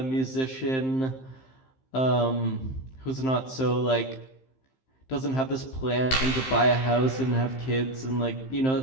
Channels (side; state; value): right; late; 15 ms